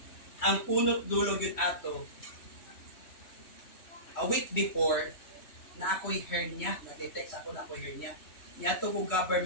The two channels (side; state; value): right; late; 3.1 ms